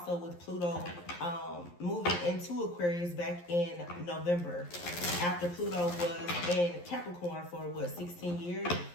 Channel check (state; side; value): late; right; 11 ms